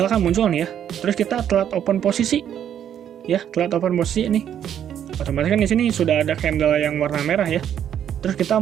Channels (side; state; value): left; quieter; 9.7 dB